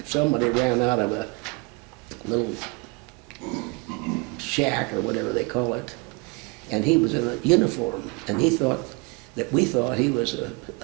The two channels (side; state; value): left; quieter; 28.6 dB